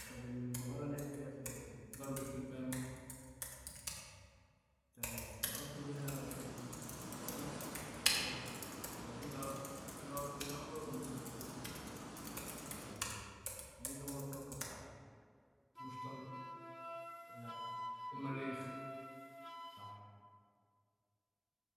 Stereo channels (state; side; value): identical; both; correlation 1.00